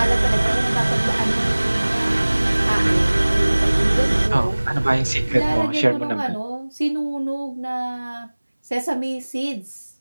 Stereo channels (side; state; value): both; inverted; correlation -1.00